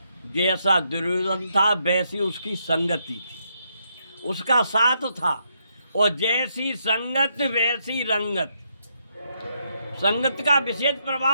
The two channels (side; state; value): both; inverted; correlation -0.77